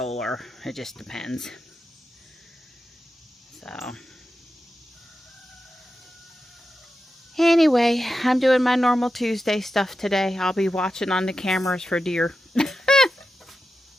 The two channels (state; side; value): normal; both; correlation 0.91